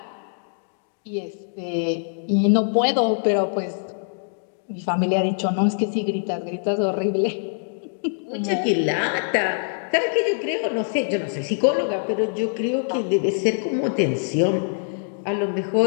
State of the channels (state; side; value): silent; right; digital silence